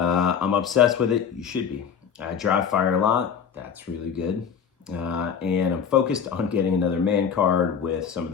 obsessed with it. You should be. I dry fire a lot. That's really good. And I'm focused on getting another man card with some of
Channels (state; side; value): quieter; right; 7.2 dB